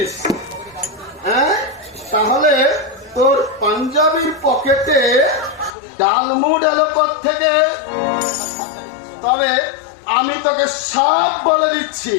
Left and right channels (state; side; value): drops out; right; at 5.8 s